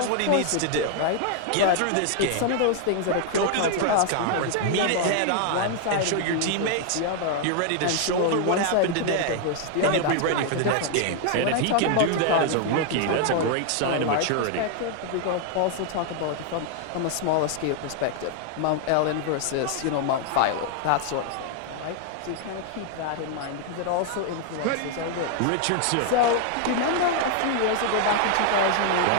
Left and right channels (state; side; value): different; both; correlation 0.00